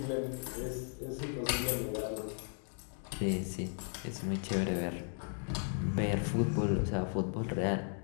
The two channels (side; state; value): right; silent; 54 dB below the other